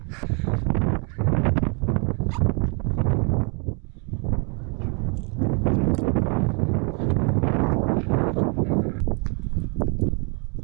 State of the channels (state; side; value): quieter; left; 36.6 dB